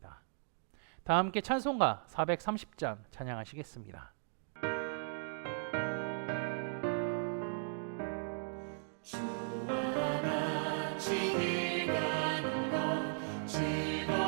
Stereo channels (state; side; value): silent; left; digital silence